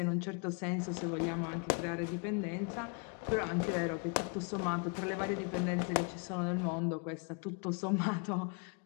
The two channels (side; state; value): right; quieter; 37.0 dB